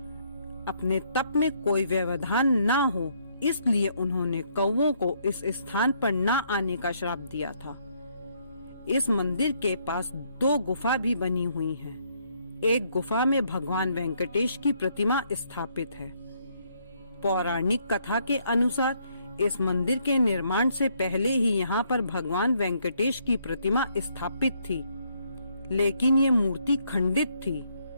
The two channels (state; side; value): inverted; both; correlation -0.71